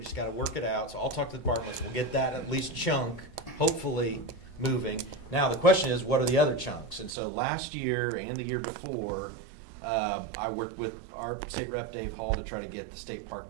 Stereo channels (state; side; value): drops out; left; at 7.1 s